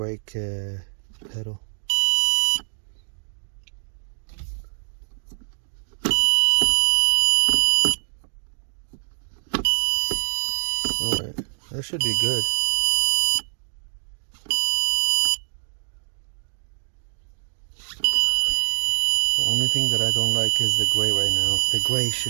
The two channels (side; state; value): left; silent; digital silence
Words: pedal. Alright, that should be good. The only thing that I don't like is the gray right now. The gray